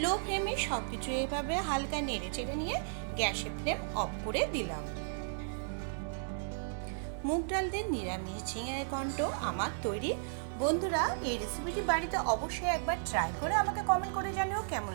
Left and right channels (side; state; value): left; silent; 55 dB below the other